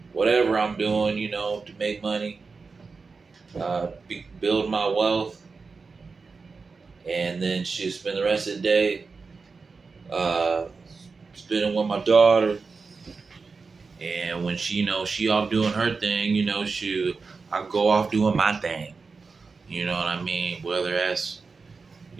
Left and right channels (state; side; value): quieter; left; 4.5 dB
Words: whatever I'm doing, to make money, build my wealth, and then she spend the rest of the day spending with my daughter. And when she off doing her thing, I go off doing my thing. You know what I mean? Whether that's